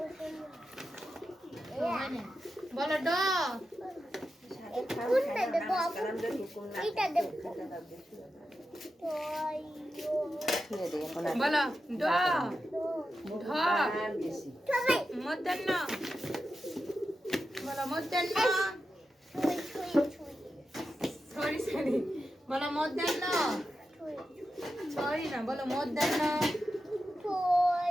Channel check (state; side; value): normal; both; correlation 0.90